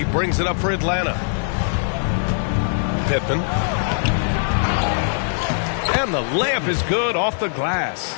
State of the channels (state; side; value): silent; right; digital silence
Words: brings it up for Atlanta. Pippen. And the layup is good off the glass.